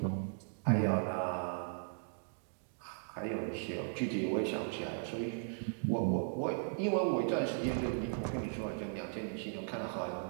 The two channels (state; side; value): silent; left; digital silence